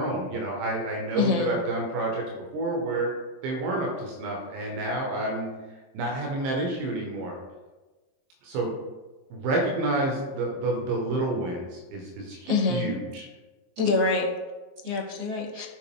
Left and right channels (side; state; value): left; late; 23 ms